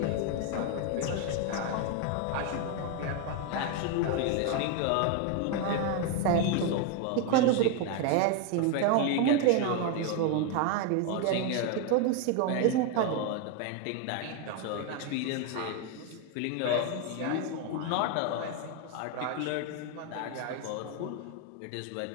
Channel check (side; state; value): both; different; correlation 0.01